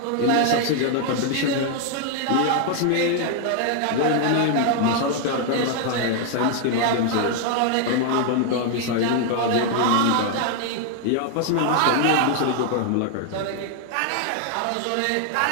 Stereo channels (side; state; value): both; different; correlation 0.00